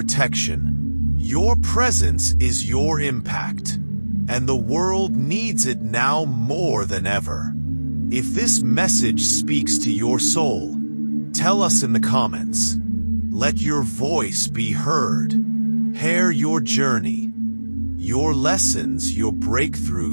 Your presence is your impact. And the world needs it now more than ever. If this message speaks to your soul, tell us in the comments. Let your voice be heard. Share your journey, your lessons, your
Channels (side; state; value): both; inverted; correlation -1.00